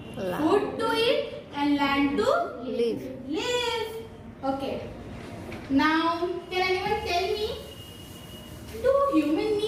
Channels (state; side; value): identical; both; correlation 1.00